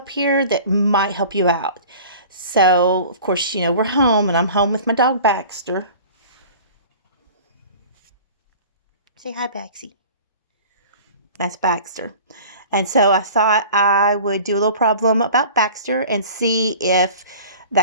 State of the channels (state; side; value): inverted; both; correlation -0.43